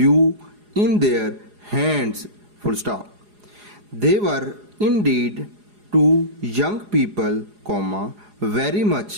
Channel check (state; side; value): late; left; 4.8 ms